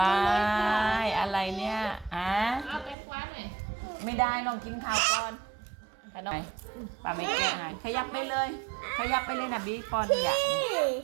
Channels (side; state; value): left; drops out; at 3.0 s